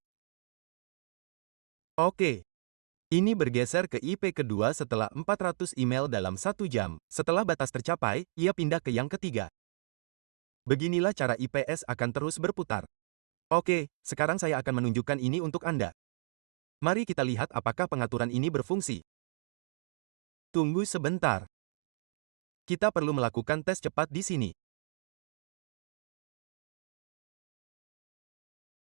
Oke. Ini bergeser ke IP kedua setelah 400 email dalam 1 jam. Setelah batas tercapai, ia pindah ke yang ketiga. Beginilah cara IPS akan terus berputar. Oke, sekarang saya akan menunjukkan ini untuk Anda. Mari kita lihat apakah pengaturan ini berfungsi. Tunggu sebentar. Kita perlu melakukan tes cepat di sini.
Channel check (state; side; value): silent; left; digital silence